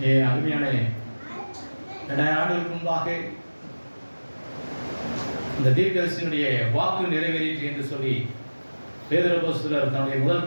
அருமையான 2000 ஆண்டுகளுக்கு முன்பாக இந்த தீர்க்கதரிசியினுடைய வாக்கு நிறைவேறிற்று என்று சொல்லி பேதுரு அப்போஸ்தலர் தன்னுடைய முதல்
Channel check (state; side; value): inverted; both; correlation -1.00